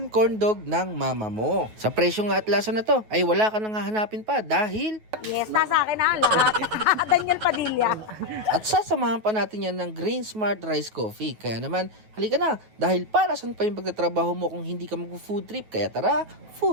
corn dog ng mama mo. Sa presyo nga at lasa na to ay wala ka nang hahanapin pa dahil... Yes, nasa akin na lahat. Daniel Padilla. At sasamahan pa natin yan ng Grain Smart Rice Coffee. Kaya naman, halika na dahil para saan pa yung pagtatrabaho mo kung hindi ka mag-food trip. Kaya tara,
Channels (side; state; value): left; late; 9.3 ms